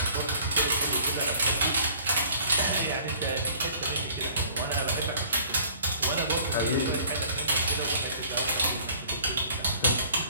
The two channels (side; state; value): both; inverted; correlation -0.53